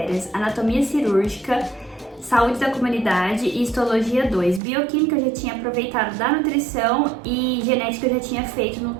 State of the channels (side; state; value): left; drops out; at 4.6 s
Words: anatomia cirúrgica, saúde da comunidade e histologia 2. Bioquímica eu já tinha aproveitado da nutrição e genética eu já tinha feito no